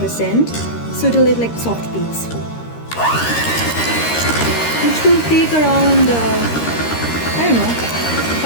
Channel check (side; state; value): right; late; 13 ms